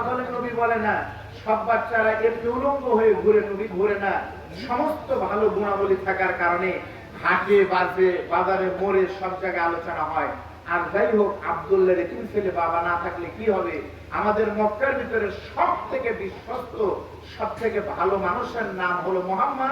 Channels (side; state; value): both; identical; correlation 1.00